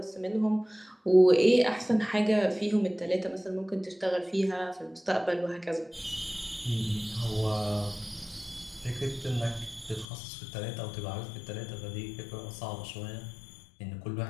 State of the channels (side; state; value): right; drops out; at 10.1 s